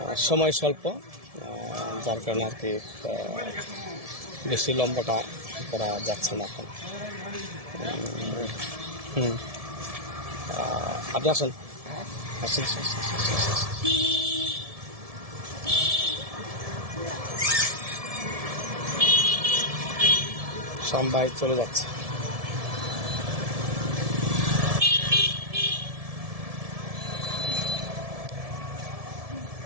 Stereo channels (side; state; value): left; late; 1.7 ms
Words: সময় স্বল্প, যার কারণে আর কি বেশি লম্বাটা করা যাচ্ছে না এখন। আপনি আসেন, আসেন। সবাই চলে যাচ্ছে।